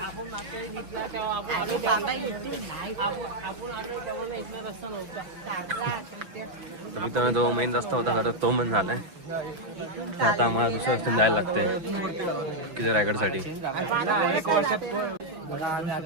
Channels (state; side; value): late; left; 6.0 ms